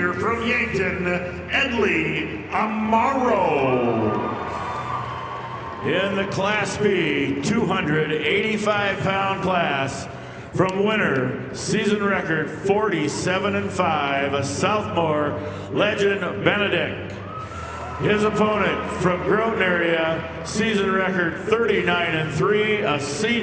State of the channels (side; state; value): both; identical; correlation 1.00